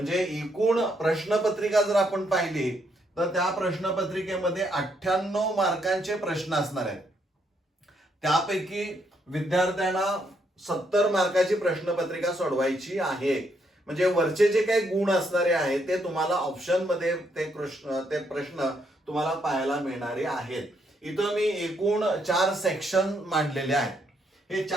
एकूण प्रश्नपत्रिका जर आपण पाहिली तर त्या प्रश्नपत्रिकेमध्ये 98 मार्कांचे प्रश्न असणार आहेत. त्यापैकी विद्यार्थ्यांना 70 मार्काची प्रश्नपत्रिका सोडवायची आहे. म्हणजे वरचे जे काही गुण असणारे आहेत ते तुम्हाला ऑप्शन मध्ये ते प्रश्न तुम्हाला पाहायला मिळणारे आहेत. इथं मी एकूण 4 सेक्शन मांडलेले आहेत. हे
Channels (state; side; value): normal; both; correlation 0.75